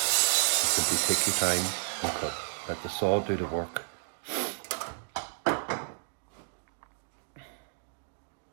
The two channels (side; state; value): left; silent; digital silence